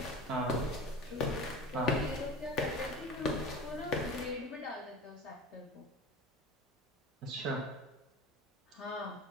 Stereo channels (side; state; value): both; normal; correlation 0.34